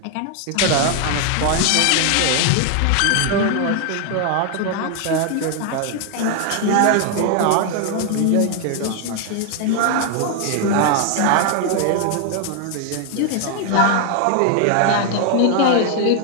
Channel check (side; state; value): both; different; correlation 0.00